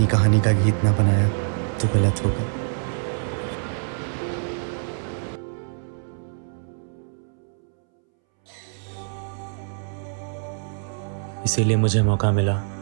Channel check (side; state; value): left; silent; 62 dB below the other